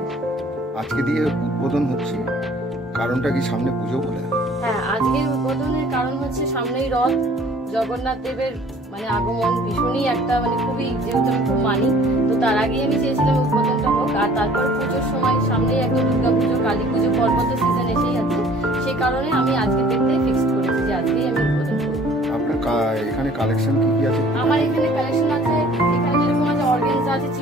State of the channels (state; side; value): normal; both; correlation 0.53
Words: আজকে দিয়ে উদ্বোধন হচ্ছে, কারণটা কি সামনে পুজো বলে? হ্যাঁ, আজকের উদ্বোধনের কারণ হচ্ছে সামনেই রথ, জগন্নাথ দেবের মানে আগমন ভীষণই একটা মানে খুবই, যেহেতু আমি খুব মানি, তো তার আগেই আমি চেয়েছিলাম উদ্বোধনটা হোক। আর তারপর পুজোর সময় সামনেই একদম দুর্গা পুজো, কালী পুজো, পর্বত সিজন এসেই আছে, সেই কারণে আমি আজকে দেখতে ফিক্স করেছি যে আজকেই আমি উদ্বোধন করব। আপনার এখানে কালেকশন কি কি আছে? আমার এখানে কালেকশন আছে, এখানে যেরকম আছে অর্গানজা আছে,